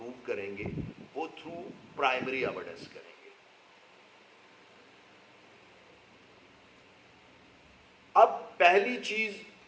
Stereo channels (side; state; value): both; identical; correlation 1.00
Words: کریں گے وہ تھرو پرائمری ایویڈنس کریں گے. اب پہلی چیز